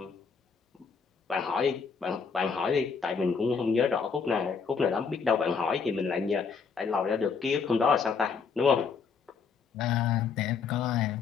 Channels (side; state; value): right; quieter; 5.7 dB